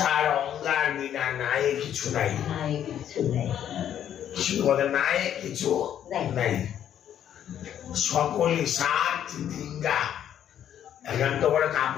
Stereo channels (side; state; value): right; quieter; 10.1 dB